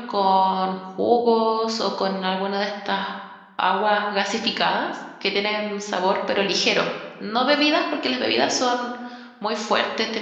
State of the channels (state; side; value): identical; both; correlation 1.00